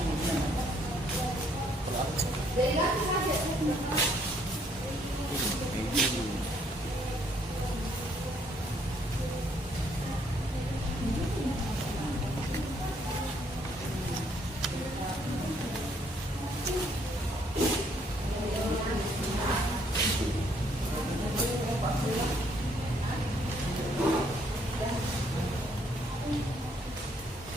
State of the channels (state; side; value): normal; both; correlation 0.68